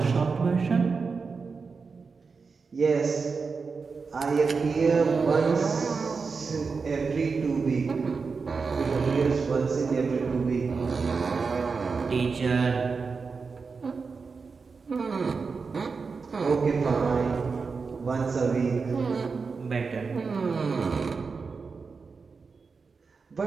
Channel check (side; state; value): left; quieter; 4.9 dB